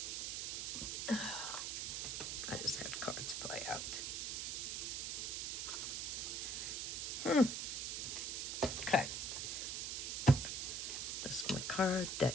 I just had cards play out. Okay. This is my card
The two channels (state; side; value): noise; right; hiss, 1 dB below the sound